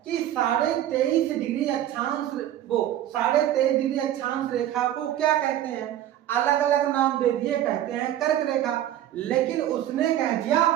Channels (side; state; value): left; quieter; 12.2 dB